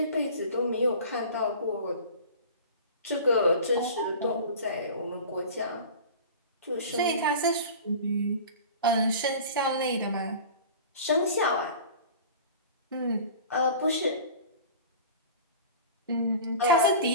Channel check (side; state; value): both; inverted; correlation -0.38